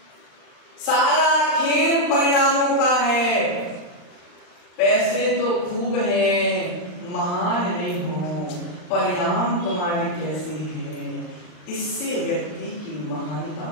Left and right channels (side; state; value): right; late; 39 ms